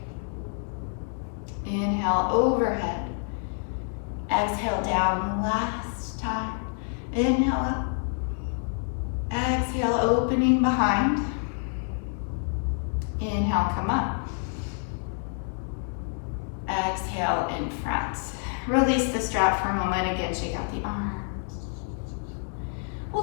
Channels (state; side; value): silent; right; 56 dB below the other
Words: Inhale overhead, exhale down. Last time. Inhale up, exhale opening behind. Inhale, come up. Exhale in front. Release the strap for a moment. Again, shake out the arms.